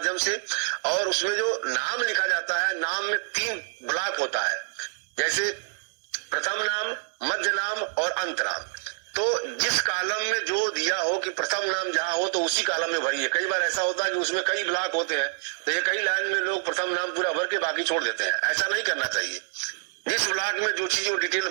से। और उसमें जो नाम लिखा जाता है, नाम में 3 ब्लॉक होता है, जैसे प्रथम नाम, मध्य नाम और अंत नाम। तो जिस कॉलम में जो दिया हो कि प्रथम नाम जहां हो तो उसी कॉलम में भरिए। कई बार ऐसा होता है कि उसमें कई ब्लॉक होते हैं तो ये कई लाइन में लोग प्रथम नाम पूरा भर के बाकी छोड़ देते हैं, ऐसा नहीं करना चाहिए। जिस ब्लॉक में जो चीज वो डिटेल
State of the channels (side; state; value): left; silent; 60 dB below the other